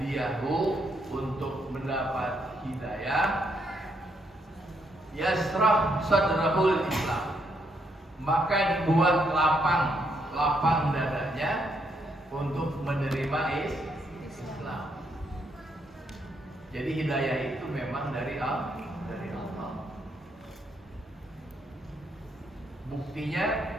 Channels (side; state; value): both; normal; correlation 0.75